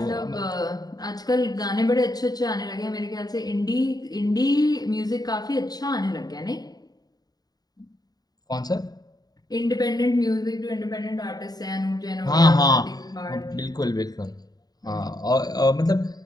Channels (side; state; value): right; late; 0.19 ms